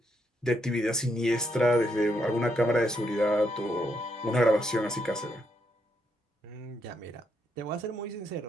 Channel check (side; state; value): both; normal; correlation 0.78